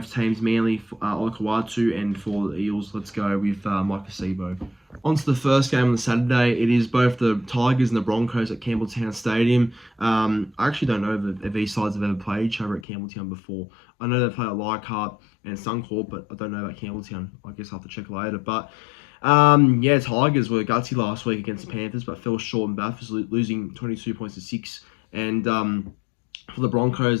teams, Manly, Olakawatu, and for the Eels, let's go with Mike Acebo. On to the first game on the Saturday. It is both the Tigers and the Broncos at Campbelltown Stadium. I actually don't know if these sides have ever played each other at Campbelltown before. I know they've played at Leichhardt and Suncorp, but I don't know about Campbelltown. I guess I'll have to check later. But Tigers were gutsy last week against the Panthers, but fell short in Bathurst, losing 22 points to 6. And for the Broncos,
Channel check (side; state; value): right; drops out; at 12.9 s